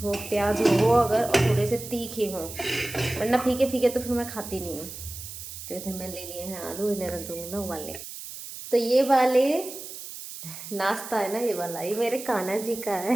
प्याज हो अगर, और थोड़े से तीखे हों, वरना फीके फीके तो फिर मैं खाती नहीं हूँ। तो इधर मैं ले लिए हैं आलू, इन्हें रख दूँगी मैं उबालने। तो ये वाले नाश्ता है ना, ये वाला, ये मेरे कान्हा जी का है।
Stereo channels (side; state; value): right; noise; hiss, 11 dB below the sound